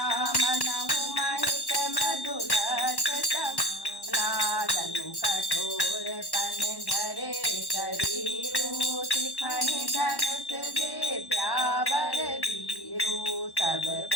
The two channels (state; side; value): late; right; 1.1 ms